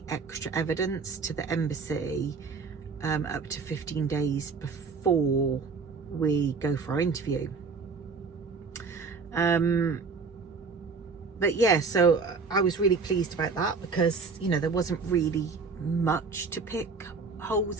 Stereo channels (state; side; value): quieter; left; 4.7 dB